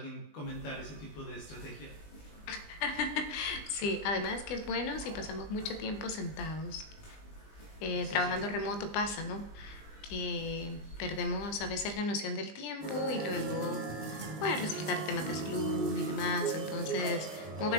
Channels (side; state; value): right; late; 20 ms